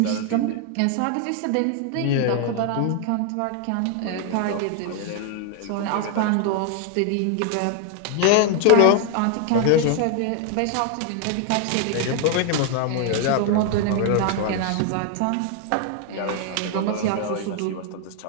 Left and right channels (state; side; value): different; both; correlation 0.00